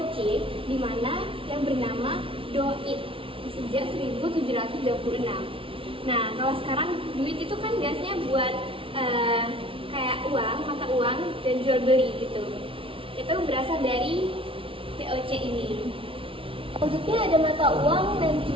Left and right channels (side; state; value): left; late; 0.26 ms